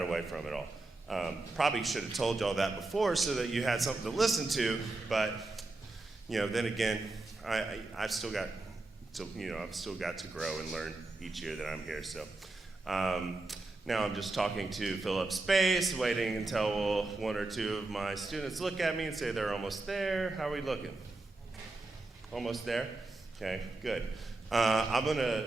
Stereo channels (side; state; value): left; quieter; 3.1 dB